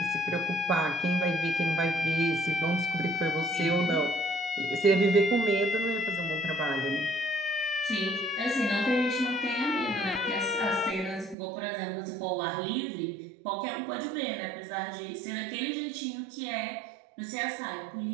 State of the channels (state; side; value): drops out; left; at 11.4 s